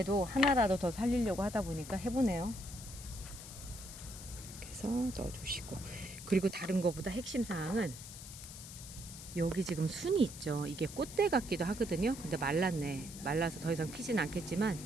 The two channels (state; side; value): noise; left; hiss, 13 dB below the sound